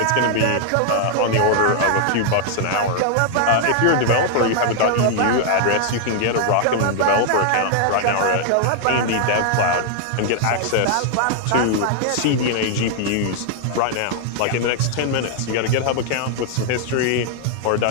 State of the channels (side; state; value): both; different; correlation 0.00